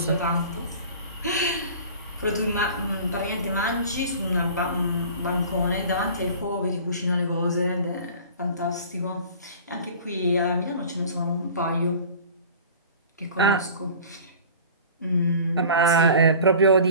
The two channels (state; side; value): inverted; both; correlation -0.42